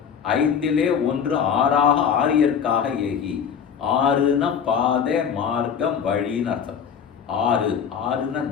5லே 1 ஆறாக ஆரியற்காக ஏகி. 6னா பாதை, மார்க்கம், வழின்னு அர்த்தம். 6னா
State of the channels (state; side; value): quieter; right; 7.5 dB